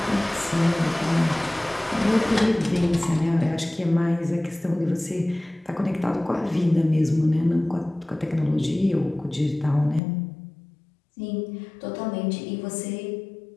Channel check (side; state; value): right; drops out; at 10.0 s